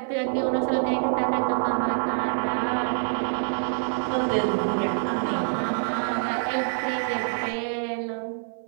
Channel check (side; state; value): left; silent; 55 dB below the other